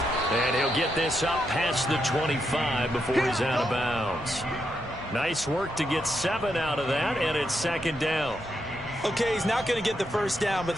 And he'll get this up past the 25 before he's out of bounds. Nice work to get 7 out of that, and it's second down. Okay, he's not going to get the first down, but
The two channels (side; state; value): both; normal; correlation 0.82